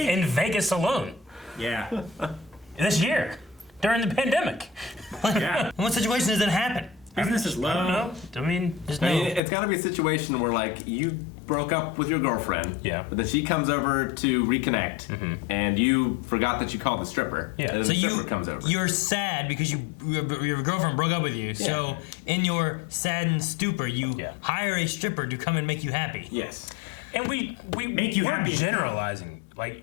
in Vegas alone Yeah. this year during the pandemic. Yeah. In what situation does that happen? Business is I don't low. know. I mean, There's I no. mean, it's got to be a situation where like you broke up with your girlfriend, Yeah. but then she comes over to reconnect, and you forgot that you called the stripper. Yeah. And then So the stripper comes over. you're sad because your girlfriend broke up with you. So in your saddened stupor, you Yeah. hire a stripper to come and make you happy. Yes. and we Make you we're happy. generalizing.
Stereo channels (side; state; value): right; drops out; at 9.4 s